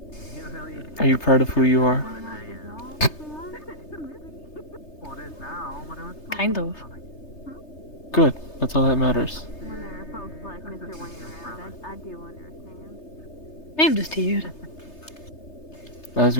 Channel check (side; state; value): right; late; 3.3 ms